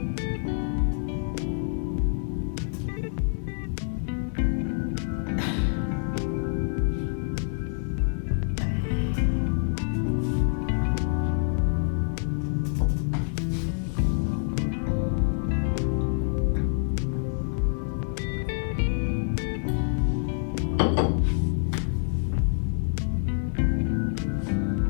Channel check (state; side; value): silent; right; digital silence